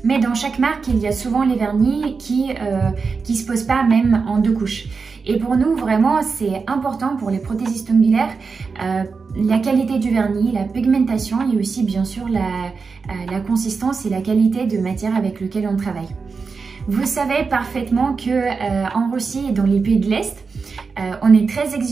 Mais dans chaque marque, il y a souvent les vernis qui se posent pas même en 2 couches. Et pour nous, vraiment, c'est important pour les prothésistes ongulaires, la qualité du vernis, la pigmentation et aussi bien sûr la consistance et la qualité de matière avec laquelle on travaille. Vous savez parfaitement que en Russie et dans les pays de l'Est, on est très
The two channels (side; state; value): left; quieter; 4.9 dB